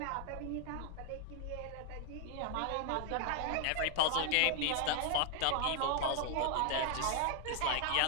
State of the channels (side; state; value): both; different; correlation 0.00